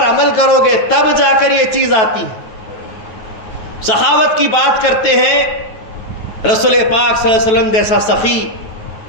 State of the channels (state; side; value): late; right; 9.2 ms